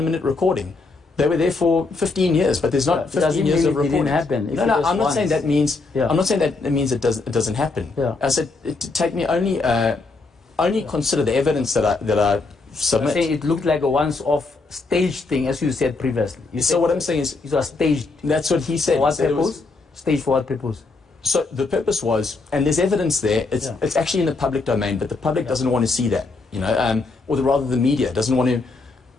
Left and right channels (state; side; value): quieter; right; 3.7 dB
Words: recording. They were there for 15 years, but there's not 15 years of reporting. It didn't happen. No, I'm not saying that means. I'm not saying that it means it doesn't happen. I said take me only consider the evidence that I submit. I'm saying it looked like a once-off staged thing, as you said previously. So what I'm saying is it was staged. That's what he said. For what purpose? Staged for what purpose? So the purpose was, and there's evidence there. It's actually in the public domain, but the public doesn't want to see that. You know, or rather the media doesn't want to